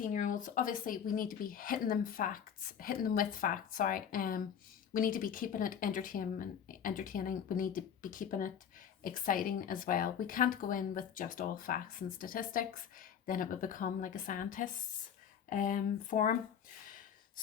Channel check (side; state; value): right; quieter; 8.2 dB